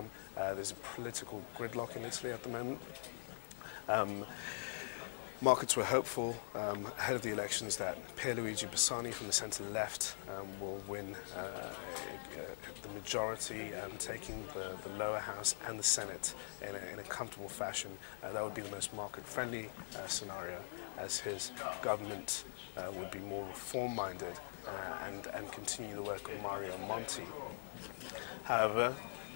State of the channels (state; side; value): silent; right; digital silence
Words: There's a political gridlock in Italy at the moment. Markets were hopeful ahead of the elections that Bersani from the centre-left will win the majority, taking the lower house and the Senate in a comfortable fashion. That would be the most market-friendly scenario, as his government would be more reform-minded and continue the work of Mario Monti. However,